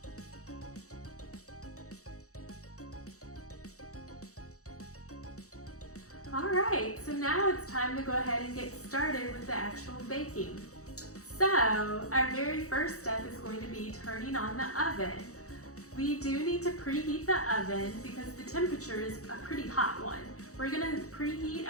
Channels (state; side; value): late; right; 0.65 ms